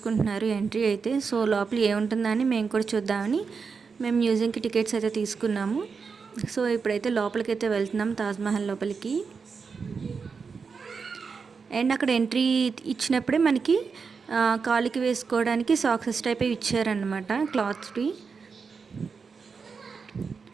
ఎంట్రీ అయితే. సో లోపల ఏముంటుందా అని మేము కూడా చూద్దామని మేము మ్యూజియంకి టికెట్స్ అయితే తీసుకున్నాము. సో ఇప్పుడైతే లోపలికి అయితే వెళ్తున్నాం, తాజ్మహల్ లోపలికి. అండ్ అక్కడ ఎంట్రీ ఇచ్చినప్పుడే మనకి కాలుకి వేసుకోవడానికి సాక్సెస్ టైప్ ఇచ్చారనమాట, క్లాత్స్వి.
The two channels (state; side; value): quieter; left; 5.3 dB